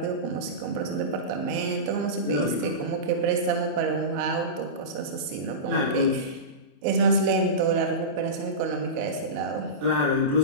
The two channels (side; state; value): left; late; 27 ms